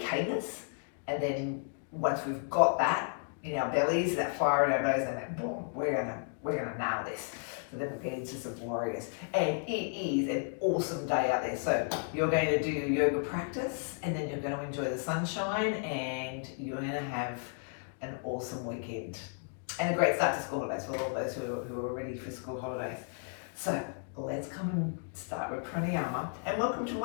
And then once we've got that in our bellies, that fire in our bellies, and then boom, we're gonna nail this. So then we'll get into some warriors. And it is an awesome day out there. So you're going to do your yoga practice, and then you're going to enjoy the sunshine, and you're going to have an awesome weekend. And a great start to school holidays for all those who are ready for school holidays. So let's come and start with pranayama. And welcome to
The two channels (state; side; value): silent; right; 56 dB below the other